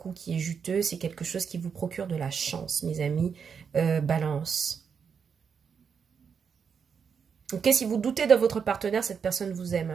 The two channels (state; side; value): quieter; left; 6.5 dB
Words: qui est juteux, c'est quelque chose qui vous procure de la chance, mes amis. Balance. Ok, si vous doutez de votre partenaire, cette personne vous aime,